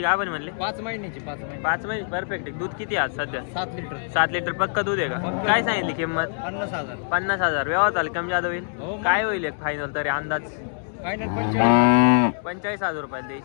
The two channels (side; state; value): right; silent; digital silence